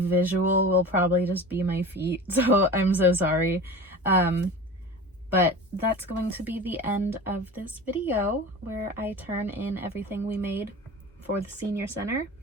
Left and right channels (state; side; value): normal; both; correlation 0.34